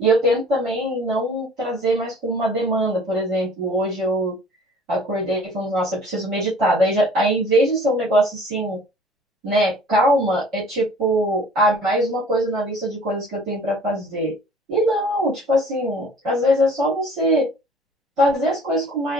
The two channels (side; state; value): both; normal; correlation 0.50